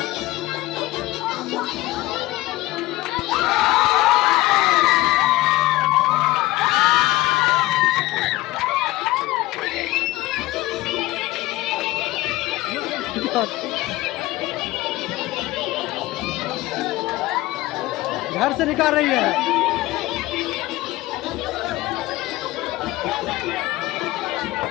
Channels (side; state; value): right; quieter; 18.1 dB